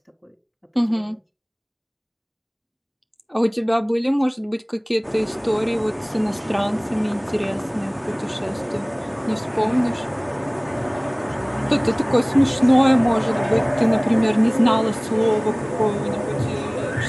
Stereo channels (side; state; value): both; identical; correlation 1.00